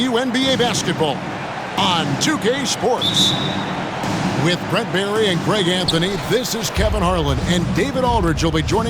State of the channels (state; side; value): identical; both; correlation 1.00